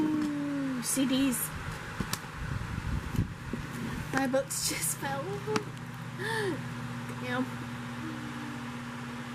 CDs. My books just fell. Damn.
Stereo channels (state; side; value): identical; both; correlation 1.00